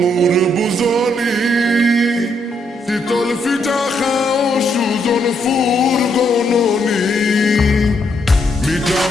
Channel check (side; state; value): both; normal; correlation 0.75